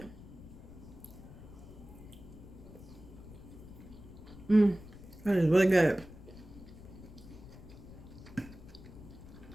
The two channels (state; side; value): noise; left; rumble, 16 dB below the sound